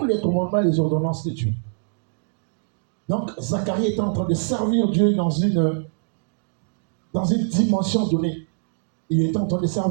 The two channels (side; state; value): left; silent; digital silence